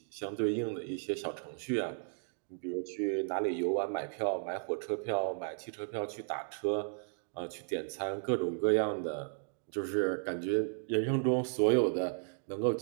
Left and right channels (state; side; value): silent; left; digital silence